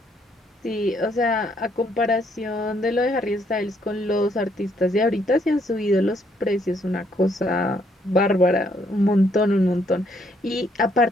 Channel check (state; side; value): normal; both; correlation 0.70